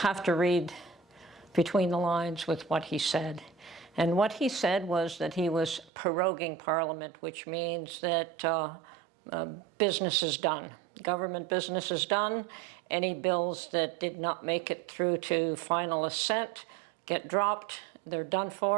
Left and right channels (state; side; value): drops out; left; at 5.9 s